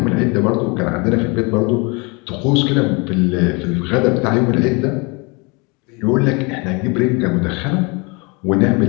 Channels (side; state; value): right; quieter; 29.2 dB